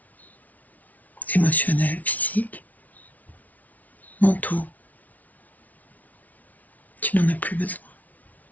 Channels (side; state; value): right; late; 0.074 ms